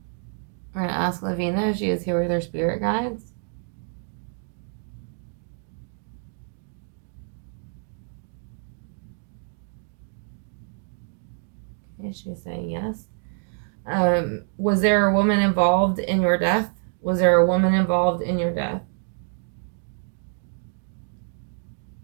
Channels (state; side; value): silent; left; 60 dB below the other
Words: We're going to ask LaVena if she is here with her spirit guides. Okay, she's saying yes. Was there a woman involved in your death? Was there a woman involved in your death?